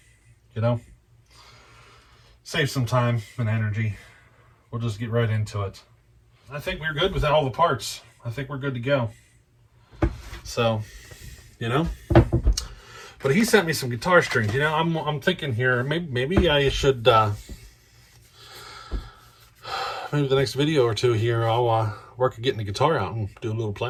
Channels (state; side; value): identical; both; correlation 1.00